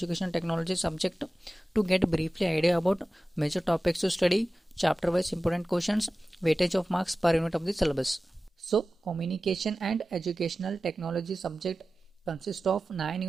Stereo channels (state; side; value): normal; both; correlation 0.96